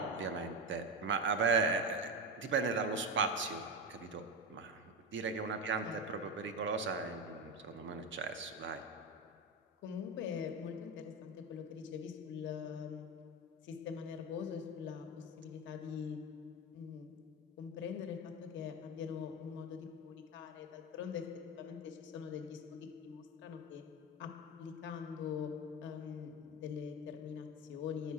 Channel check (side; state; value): both; normal; correlation 0.17